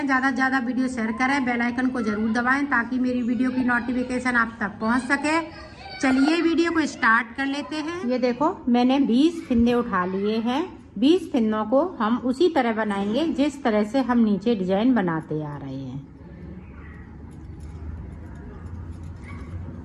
ज़्यादा से ज़्यादा वीडियो शेयर करें, बेल आइकन को ज़रूर दबाएं ताकि मेरी वीडियो की नोटिफिकेशन आप तक पहुंच सके। चलिए वीडियो को स्टार्ट कर लेते हैं। ये देखो मैंने 20 फिंदे उठा लिए हैं। 20 फिंदों को हम उसी तरह बनाएंगे जिस तरह से हम नीचे डिजाइन बनाते आ रहे हैं।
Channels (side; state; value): both; identical; correlation 1.00